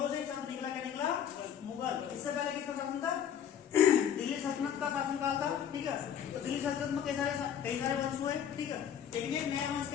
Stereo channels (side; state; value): right; quieter; 9.0 dB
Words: से शब्द निकला। क्या निकला? मुगल। इससे पहले किसका शासन था? दिल्ली सल्तनत का शासनकाल था। ठीक है, तो दिल्ली सल्तनत में कई सारे वंश हुए। ठीक है, लेकिन एक नया वंश